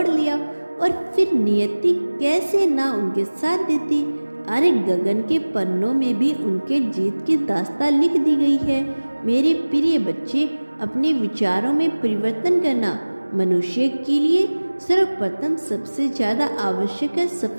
लिया। और फिर नियति कैसे ना उनके साथ देती। अरे गगन के पन्नों में भी उनके जीत की दास्तां लिख दी गई है। मेरे प्रिय बच्चे, अपने विचारों में परिवर्तन करना मनुष्य के लिए सर्वप्रथम सबसे ज़्यादा आवश्यक है।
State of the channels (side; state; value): both; inverted; correlation -1.00